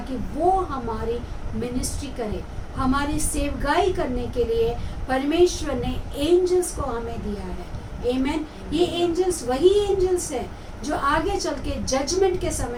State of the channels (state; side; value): identical; both; correlation 1.00